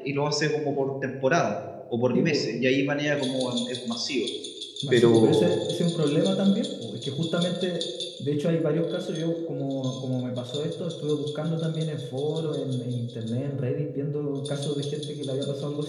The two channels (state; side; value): identical; both; correlation 1.00